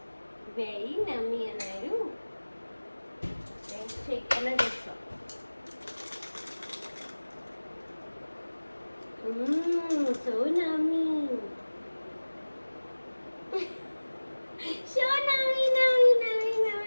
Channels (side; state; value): both; inverted; correlation -1.00